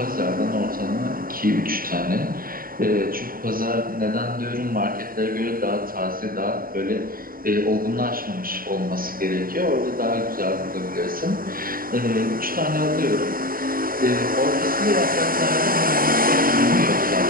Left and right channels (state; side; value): late; left; 0.42 ms